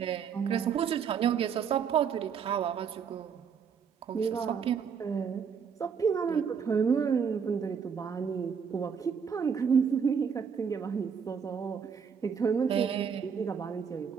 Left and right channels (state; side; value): quieter; left; 6.7 dB